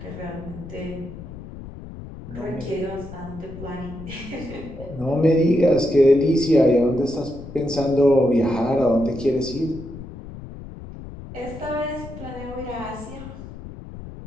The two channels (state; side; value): noise; left; rumble, 13 dB below the sound